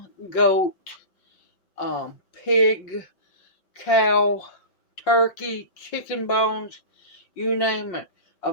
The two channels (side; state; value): right; late; 5.5 ms